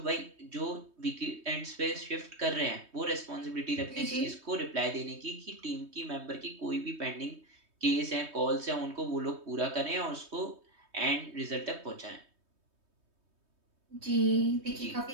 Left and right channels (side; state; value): left; late; 3.2 ms